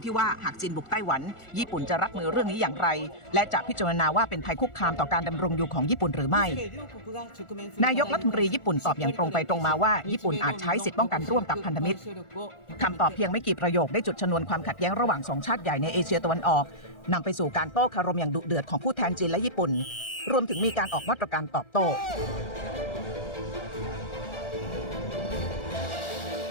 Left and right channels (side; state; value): right; late; 1.4 ms